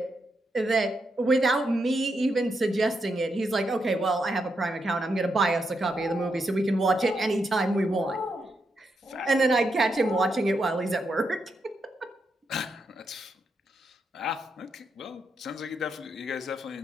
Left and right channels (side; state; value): both; normal; correlation 0.82